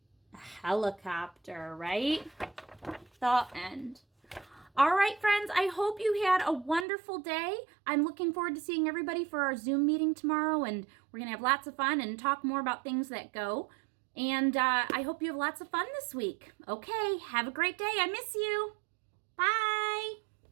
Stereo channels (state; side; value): drops out; left; at 6.9 s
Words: A helicopter, right? The end. All right, friends, I hope you had a wonderful day. I'm looking forward to seeing everybody for our Zoom meeting tomorrow, and we're going to have lots of fun and talk more about things that go. And I hope you have lots of fun this week. Okay, have a great day. I miss you. Bye.